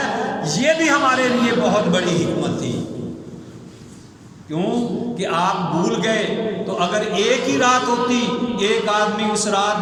یہ بھی ہمارے لیے بہت بڑی حکمت تھی۔ کیوں کہ آپ بھول گئے تو اگر ایک ہی رات ہوتی، ایک آدمی اس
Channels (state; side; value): identical; both; correlation 1.00